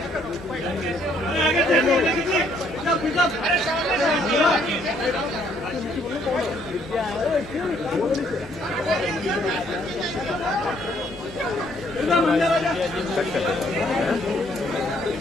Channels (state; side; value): normal; both; correlation 0.67